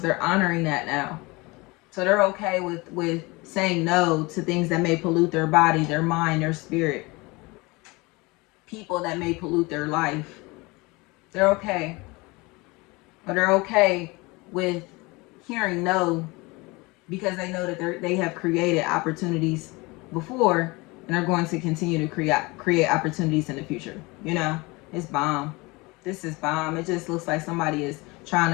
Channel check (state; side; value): quieter; right; 24.5 dB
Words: they're honoring that now. So they're okay with saying no to things that may pollute their body, their mind, their spirit. People that may pollute their life. They're okay. But they're okay with hearing no, because they know that they have created opportunities before, and are going to continue to create opportunities in the future. You know, it's bomb. This is bomb. It just looks like somebody is trying